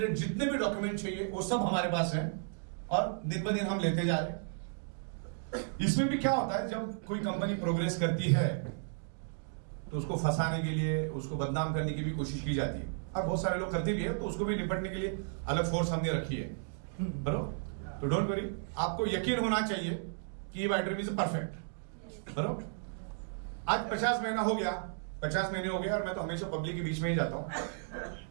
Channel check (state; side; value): silent; left; digital silence